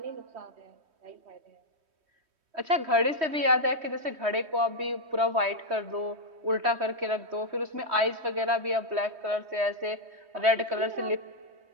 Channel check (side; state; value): left; late; 3.2 ms